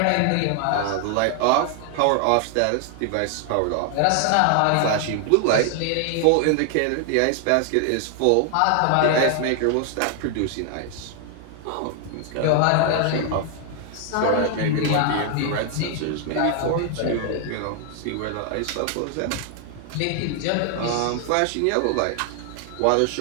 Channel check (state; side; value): different; both; correlation 0.00